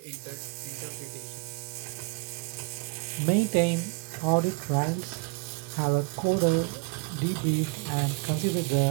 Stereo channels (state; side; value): quieter; left; 28.5 dB